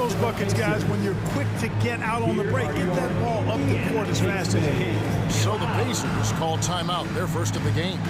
buckets, guys, when you're quick to get out on the break. Get that ball up the court as fast as you can. So the Pacers call timeout, their first of the game.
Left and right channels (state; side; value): identical; both; correlation 1.00